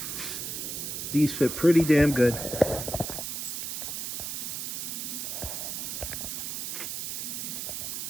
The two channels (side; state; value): right; noise; hiss, 4 dB below the sound